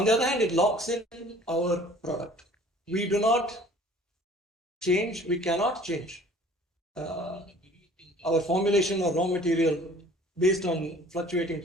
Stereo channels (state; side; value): normal; both; correlation 0.51